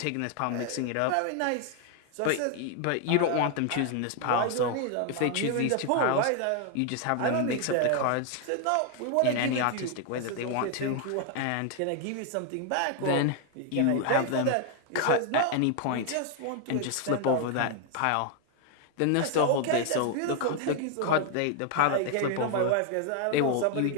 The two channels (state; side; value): different; both; correlation 0.00